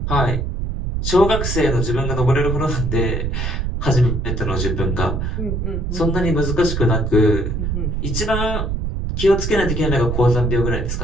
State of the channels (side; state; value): right; noise; rumble, 2 dB below the sound